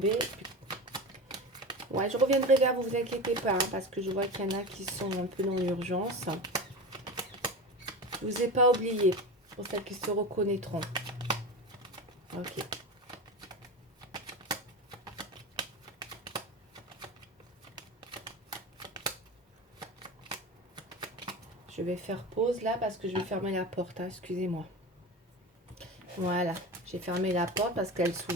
Ouais, je reviendrai vers vous, vous inquiétez pas, hein, parce que je vois qu'il y en a qui sont un peu dans l'urgence. Je vous ai pas oublié, pour celles qui se reconnaîtront. Ok. Je vais faire pause là parce que je vais fermer la porte, hein, excusez-moi. Voilà, j'ai fermé la porte parce qu'elle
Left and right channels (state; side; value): normal; both; correlation 0.27